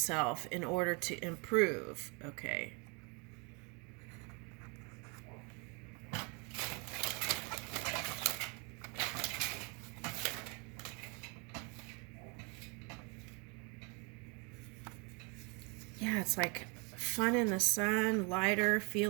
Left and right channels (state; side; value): quieter; left; 31.1 dB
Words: in order to improve. Okay. Yeah, it's like fun in the sun, lighter,